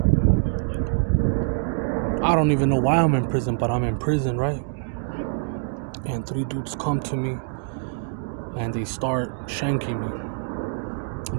I don't even know why I'm in prison, but I'm in prison, right? And three dudes come to me and they start shanking me,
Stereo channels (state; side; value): silent; left; 62 dB below the other